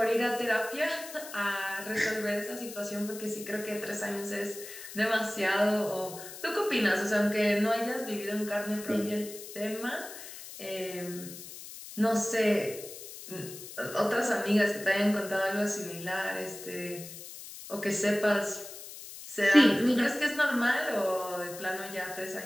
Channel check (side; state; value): left; noise; hiss, 13 dB below the sound